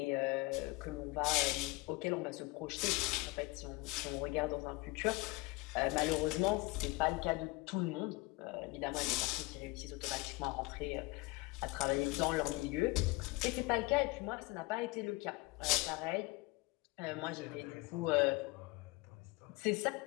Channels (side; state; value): right; quieter; 23.7 dB